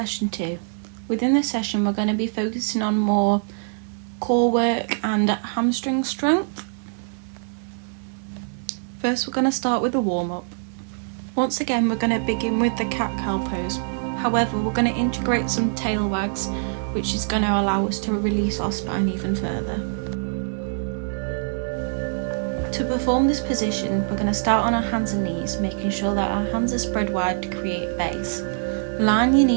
2. Within this session we're going to be focusing on more core work and hamstring strength. First we're going to start with a warm-up. Once again we're going to begin with the cat-cow pose. However, we're going to integrate some tail wags, which is going to allow us to release our spine even further. To perform this position, we're going to start on our hands and knees, making sure that our hands are spread wide to create a base. Line your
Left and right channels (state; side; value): silent; left; 63 dB below the other